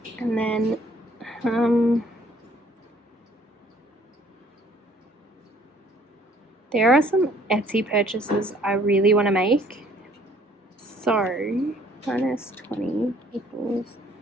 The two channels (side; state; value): both; normal; correlation 0.60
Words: And then there are some Etsy purchases I really want to make. So minus 20 equals.